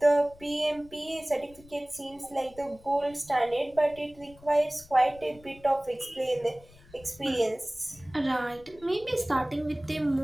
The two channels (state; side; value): noise; left; rumble, 24 dB below the sound